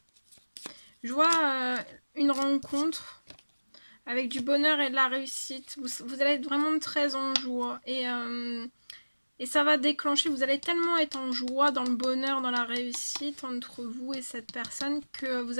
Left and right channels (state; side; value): inverted; both; correlation -1.00